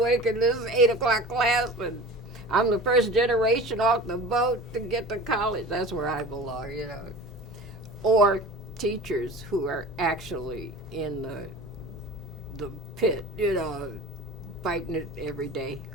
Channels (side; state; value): both; normal; correlation 0.38